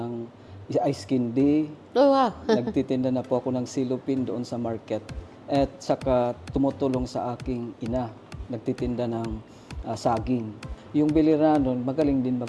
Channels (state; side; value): identical; both; correlation 1.00